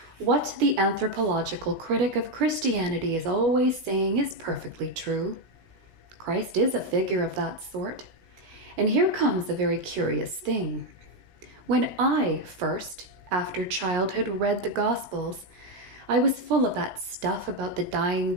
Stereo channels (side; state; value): left; late; 17 ms